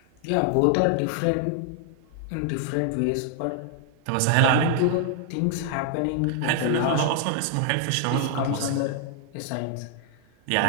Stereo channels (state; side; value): different; both; correlation 0.00